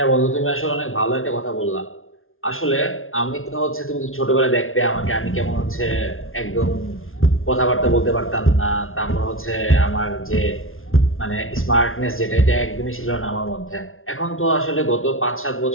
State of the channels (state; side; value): late; right; 0.60 ms